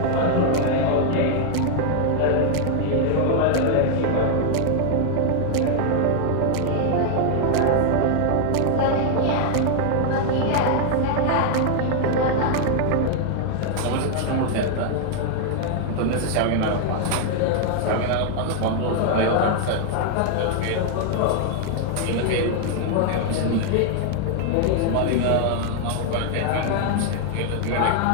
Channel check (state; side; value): different; both; correlation 0.00